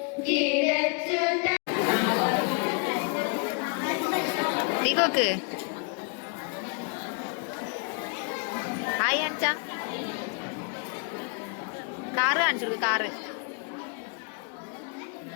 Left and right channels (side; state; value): right; quieter; 36.7 dB